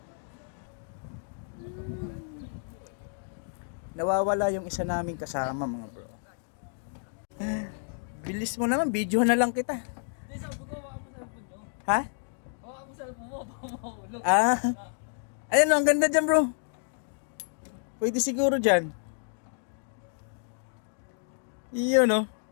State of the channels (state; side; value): silent; right; digital silence